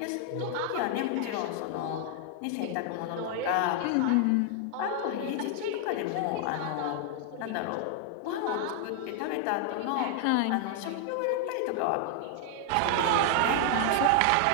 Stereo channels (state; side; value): different; both; correlation 0.00